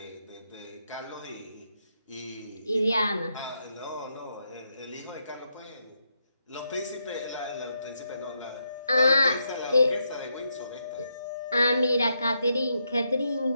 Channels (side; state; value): both; inverted; correlation -0.81